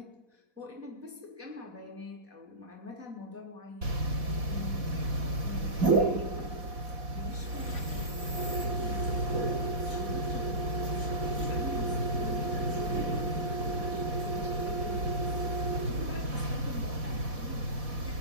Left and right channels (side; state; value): left; late; 4.1 ms